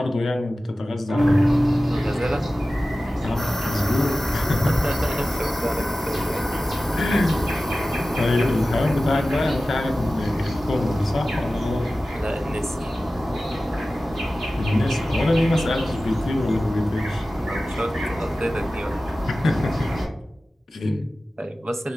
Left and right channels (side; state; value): both; normal; correlation 0.95